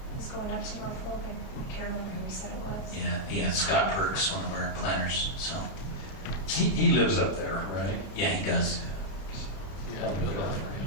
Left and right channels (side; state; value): right; late; 31 ms